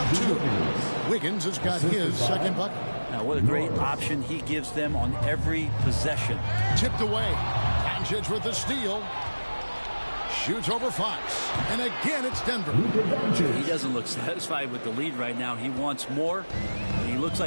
2. Wiggins has got his second bucket. Now, what a great option he gives them on every possession. Tipped away. Doncic with the steal. Shoots over Fox. And again, it's Denver. He doesn't look satisfied with the lead right now. He wants more, and he looks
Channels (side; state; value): both; inverted; correlation -1.00